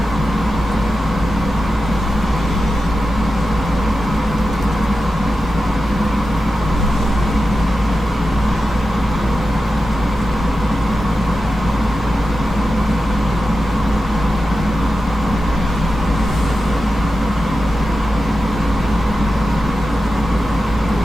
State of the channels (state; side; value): normal; both; correlation 0.91